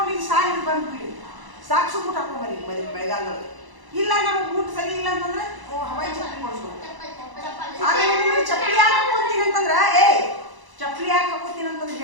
ಈಗ ಸಾಯಿ ಬಂದ್ಬಿಡಿ. ಸಾಕ್ಸು ಬೂಟ್ ಹಾಕೊಂಡ್ಬರಿ ಮಳೆಗಾಲದೊಳಗೆ. ಇಲ್ಲ ನಮ್ಗೆ ಬೂಟ್ ಸರಿ ಇಲ್ಲ ಅಂತಂದ್ರೆ ಹವಾಯಿ ಚಪ್ಪಲಿ ಕೊಡಿಸ್ಬೋದು. ಆಮೇಲೆ ನಿಮಗೆ ಚಪ್ಪಲಿ ಯಾಕೆ ಹಾಕೋತೀನಿ ಅಂತಂದ್ರ ಚಪ್ಪಲಿ ಯಾಕೆ ಹಾಕೋತೀನಿ ಅಂತಂದ್ರೆ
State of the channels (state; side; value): late; left; 1.0 ms